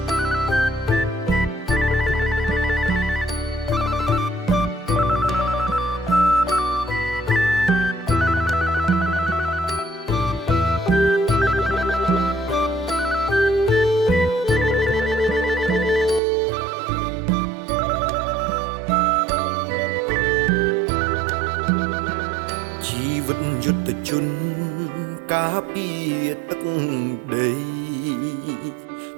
យុទ្ធជនការពារទឹកដី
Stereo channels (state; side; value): drops out; left; at 16.2 s